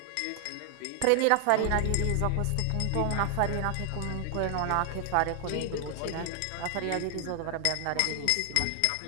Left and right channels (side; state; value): both; different; correlation 0.00